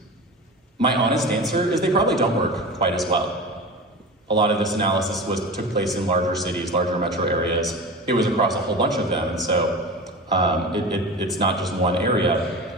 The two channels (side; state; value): both; normal; correlation 0.31